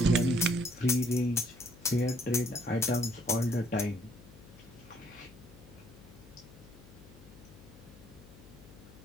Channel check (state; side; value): noise; left; hum, 20 dB below the sound